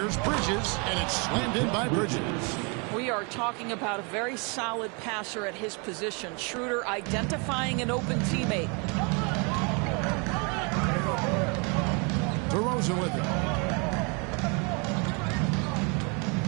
Bridges, and it's slammed in by Bridges. We are talking about a very solid passer at his position. Schroeder identifying an open teammate. DeRozan with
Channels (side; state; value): left; quieter; 32.9 dB